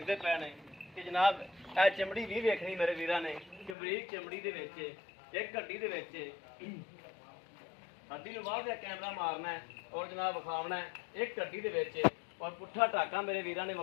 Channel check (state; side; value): drops out; right; at 3.8 s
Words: पे ने कि जनाब ए चमड़ी भी वेखनी मेरे वीरां ने कि बरीक चमड़ी दे विच एक हड्डी दे विच हड्डी नूं बाहर कैमरा मारना है और जनाब विखावना है एक हड्डी दे विच। और पुट्ठा टाका मेरे वीरां ने